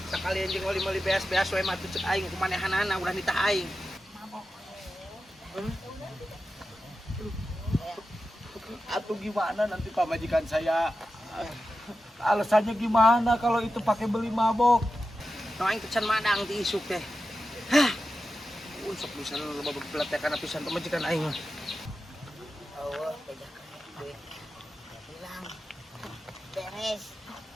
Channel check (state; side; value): normal; both; correlation 0.92